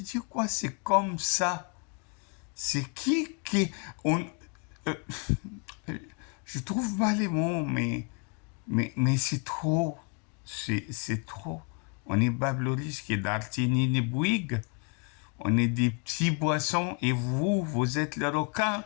quoi? C'est comme ça. C'est qui euh, je trouve pas les mots, mais c'est trop. C'est trop. On est Babloris qui est d'Artini ni Bouygues. On est des petits boissons et vous êtes le requin.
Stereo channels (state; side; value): quieter; right; 34.6 dB